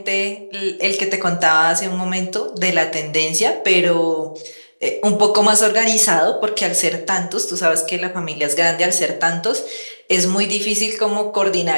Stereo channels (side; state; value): both; inverted; correlation -1.00